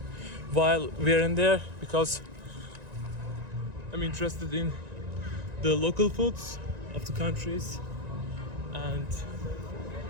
while we're in there, because I'm interested in the local foods of the countries, and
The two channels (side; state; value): left; late; 1.9 ms